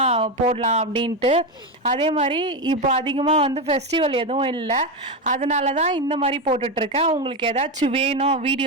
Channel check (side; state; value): both; normal; correlation 0.12